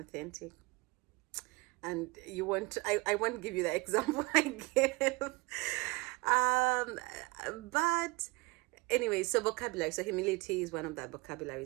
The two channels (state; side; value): quieter; left; 24.9 dB